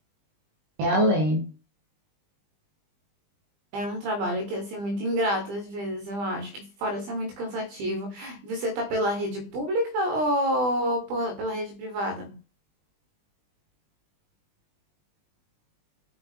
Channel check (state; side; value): late; left; 20 ms